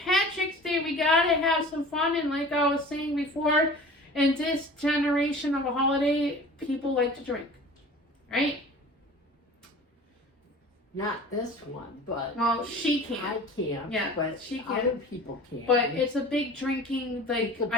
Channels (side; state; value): both; normal; correlation 0.41